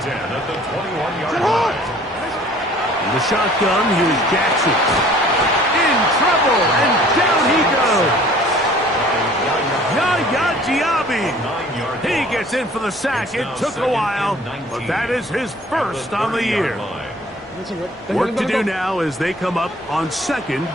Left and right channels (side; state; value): both; normal; correlation 0.52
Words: 10 at the 21-yard line. In the shotgun, here's Jackson. In trouble, and down he goes. Yaya Diaby. He gets in for the sack. It took a while, but that is his first on the year. Work to do now as they come up on second